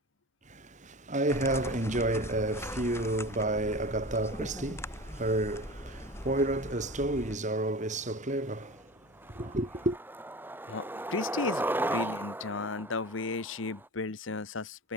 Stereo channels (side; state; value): both; normal; correlation 0.34